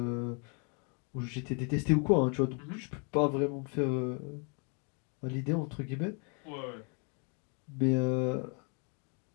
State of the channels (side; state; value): right; quieter; 36.7 dB